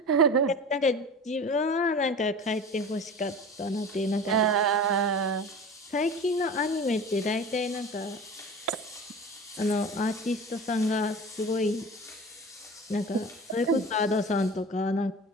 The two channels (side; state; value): both; normal; correlation 0.36